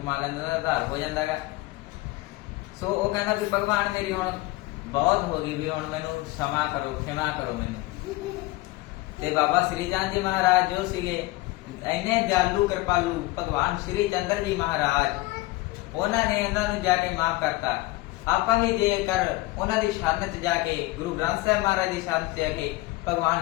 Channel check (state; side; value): quieter; right; 19.7 dB